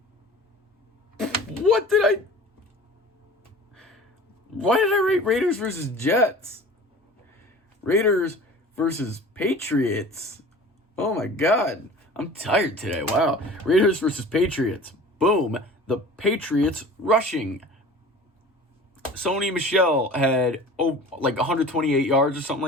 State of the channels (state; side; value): normal; both; correlation 0.41